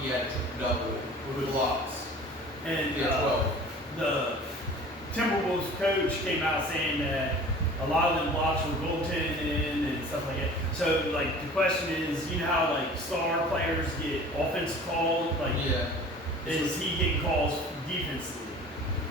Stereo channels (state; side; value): normal; both; correlation 0.44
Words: he had a triple double with blocks. And He had 12. the Timberwolves coach came out saying that a lot of them blocks were goaltending and stuff like that. So like the question is, you know how like star players get offensive calls, like Yeah. is he getting calls defensively?